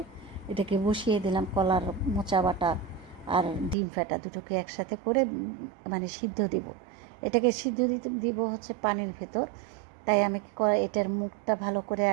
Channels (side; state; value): left; drops out; at 3.8 s